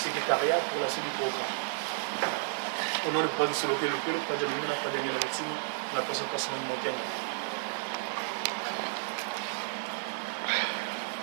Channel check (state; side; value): silent; left; 57 dB below the other